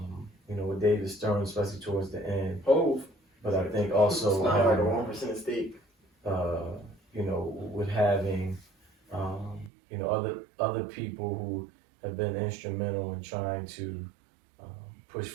know, with David Stern, especially towards the end. But I think also it's not like a 1% stake. You know, with having, you know, other people who have been instrumental in trying to push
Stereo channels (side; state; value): left; drops out; at 9.7 s